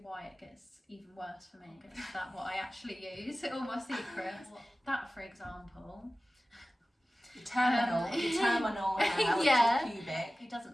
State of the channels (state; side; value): normal; both; correlation 0.97